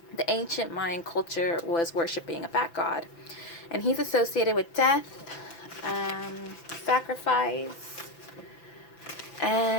the ancient Mayan culture was worshipping a bat god. And he's associated with death, sacrifice,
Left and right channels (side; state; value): right; late; 5.9 ms